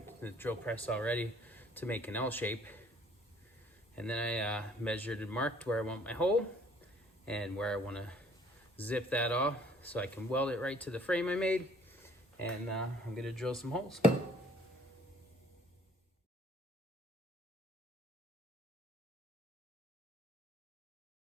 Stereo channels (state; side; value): normal; both; correlation 0.58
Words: the drill press already to make an L shape. And then I measured and marked where I want my hole and where I want to zip that off so I can weld it right to the frame I made. And I'm going to drill some holes.